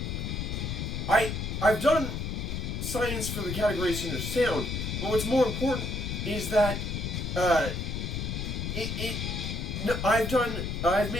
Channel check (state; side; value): noise; left; rumble, 3 dB below the sound